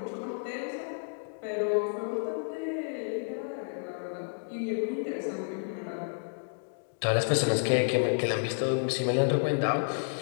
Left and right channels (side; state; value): right; silent; digital silence